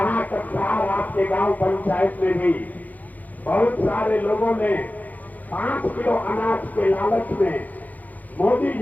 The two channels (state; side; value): late; right; 0.081 ms